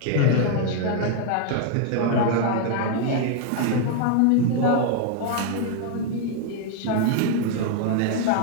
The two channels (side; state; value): both; different; correlation 0.00